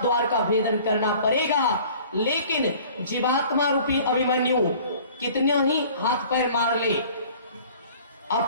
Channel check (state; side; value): inverted; both; correlation -0.49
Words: द्वार का भेदन करना पड़ेगा। लेकिन जीवात्मा रूपी अभिमन्यु कितने ही हाथ पैर मार ले,